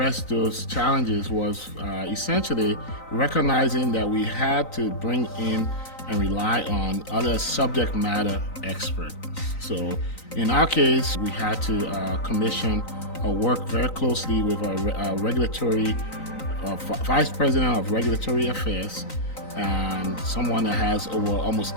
those challenges was essentially recognizing that we had to bring in and rely on other subject matter experts. So in our case, we had to commission or work very closely with a regulatory vice president of regulatory affairs and someone that has over almost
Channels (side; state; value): right; late; 3.9 ms